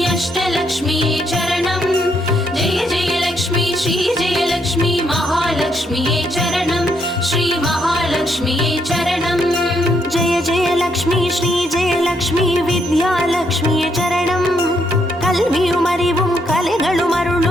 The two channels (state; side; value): normal; both; correlation 0.75